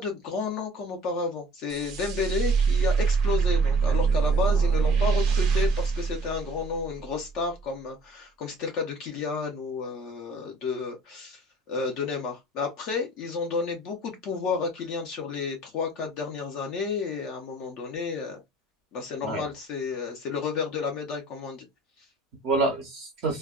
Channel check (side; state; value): both; normal; correlation 0.52